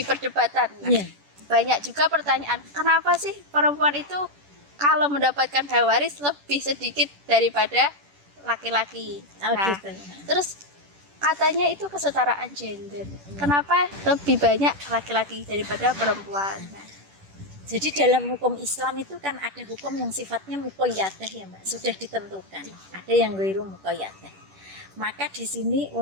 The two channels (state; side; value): late; left; 10 ms